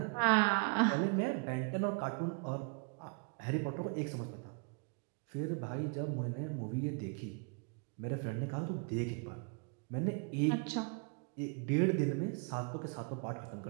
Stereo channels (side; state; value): left; quieter; 36.4 dB